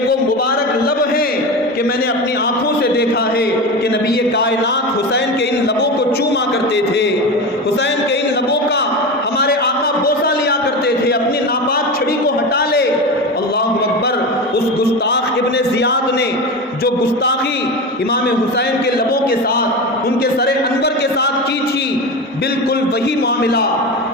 وہ مبارک لب ہیں کہ میں نے اپنی آنکھوں سے دیکھا ہے کہ نبی کائنات حسین کے ان لبوں کو چوما کرتے تھے، حسین کے ان لبوں کا ہمارے آقا بوسہ لیا کرتے تھے، اپنی ناپاک چھڑی کو ہٹا لے۔ اللہ اکبر، اس گستاخ ابن زیاد نے جو گستاخی امام حسین کے لبوں کے ساتھ ان کے سر انور کے ساتھ کی تھی، بالکل وہی معاملہ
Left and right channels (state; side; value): normal; both; correlation 0.24